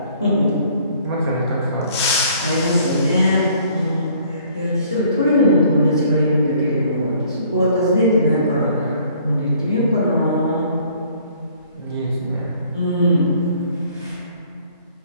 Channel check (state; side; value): inverted; both; correlation -0.59